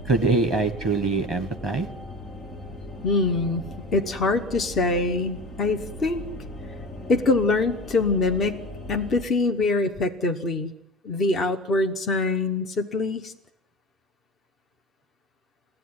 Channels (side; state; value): both; normal; correlation 0.33